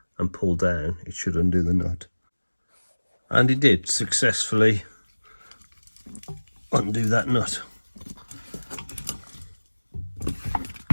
and pull down, it should undo the nut. And it did successfully undo that nut.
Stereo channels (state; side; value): inverted; both; correlation -1.00